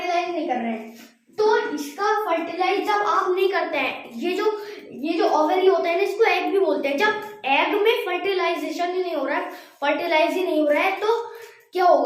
नहीं कर रहे हैं, तो इसका फर्टिलाइज जब आप नहीं करते हैं, ये जो ओवरी होता है ना, इसको एग भी बोलते हैं, जब एग में फर्टिलाइजेशन ही नहीं हो रहा है, फर्टिलाइज ही नहीं हो रहा है, तो क्या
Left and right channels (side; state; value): both; identical; correlation 1.00